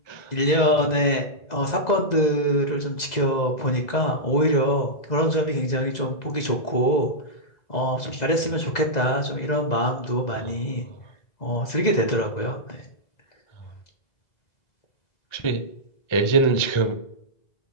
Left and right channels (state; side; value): late; right; 2.0 ms